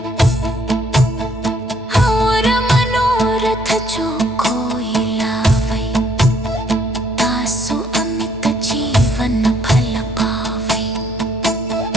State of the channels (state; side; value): normal; both; correlation 0.66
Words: और मनोरथ जो कोई लावै तासु अमित जीवन फल पावै